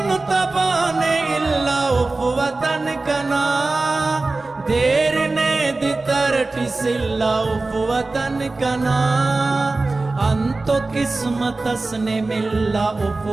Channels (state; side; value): quieter; left; 3.4 dB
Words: तबाने इल्ला उफ वतन कना देर ने दितरटी सिल्ला उफ वतन कना अंतो किस्मत असने मिल्ला उफ